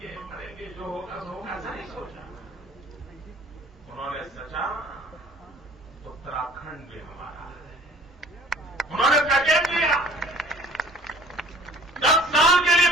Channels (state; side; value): normal; both; correlation 0.51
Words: करेंगे जो होगा सो होगा, ऐसा नहीं सोचा। उन्होंने सोचा उत्तराखंड भी हमारा है। उन्होंने पैकेज दिया, 10 साल के लिए